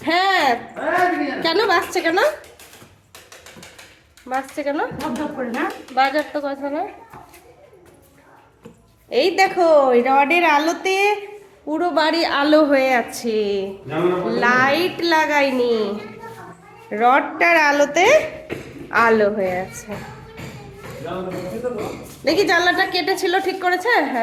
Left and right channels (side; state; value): both; identical; correlation 1.00